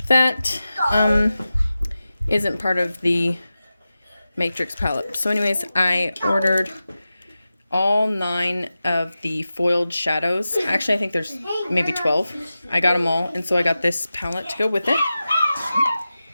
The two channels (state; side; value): inverted; both; correlation -0.94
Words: that isn't part of the Matrix palette. So anyways, I ordered all 9 of the foiled shadows. Actually, I think there's maybe 12. I got them all, and so I got this palette to go with it.